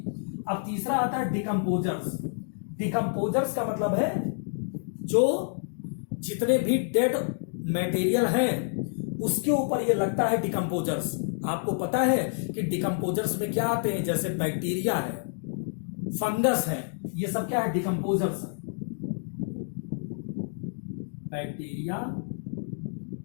अब तीसरा आता है डिकम्पोजर्स। डिकम्पोजर्स का मतलब है जो जितने भी डेड मटेरियल हैं उसके ऊपर ये लगता है डिकम्पोजर्स। आपको पता है कि डिकम्पोजर्स में क्या आते हैं, जैसे बैक्टीरिया है, फंगस है, ये सब क्या है, डिकम्पोजर्स है। बैक्टीरिया,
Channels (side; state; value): right; silent; digital silence